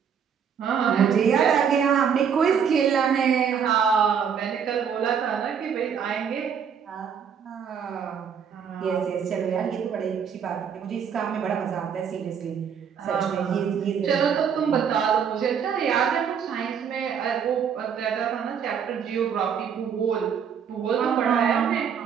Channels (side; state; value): left; quieter; 7.4 dB